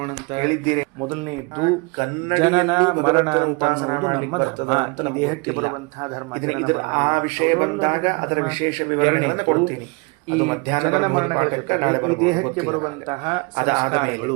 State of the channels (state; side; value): quieter; left; 29.3 dB